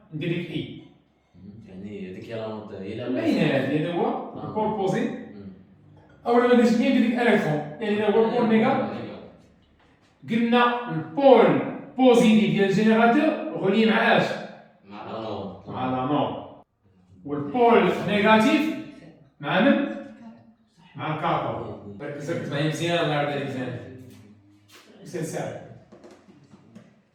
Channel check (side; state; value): both; identical; correlation 1.00